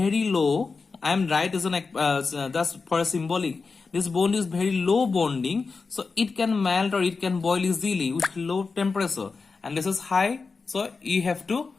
low, I am right as an that's for a symbolic. This bond is very low bonding, so it can melt or it can boil easily with low temperature. And this is high, so you have to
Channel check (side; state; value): right; quieter; 4.5 dB